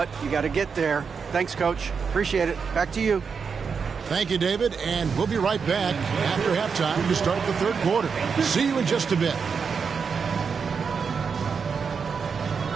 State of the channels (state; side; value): quieter; left; 5.9 dB